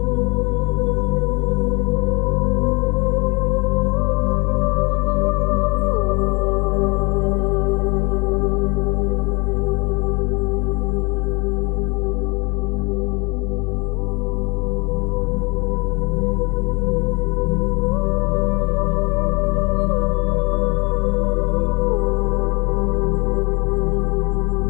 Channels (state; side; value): quieter; right; 28.6 dB